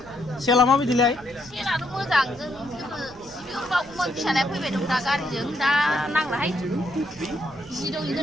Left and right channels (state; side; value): noise; right; rumble, 22 dB below the sound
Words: सेला माबायदिलाय सेलाथ' मोजां जों बावगौमोन फिसालाया फैबाय दं दा गारिजों दा नांलाहाय जि दं